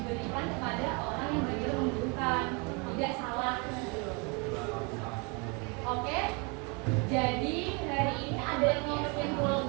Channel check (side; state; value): left; quieter; 31.8 dB